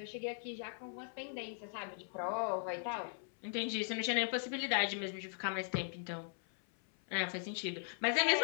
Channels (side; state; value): right; silent; 52 dB below the other